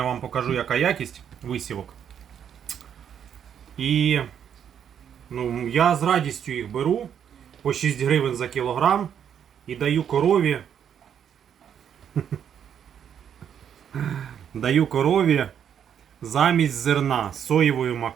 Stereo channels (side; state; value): left; quieter; 8.7 dB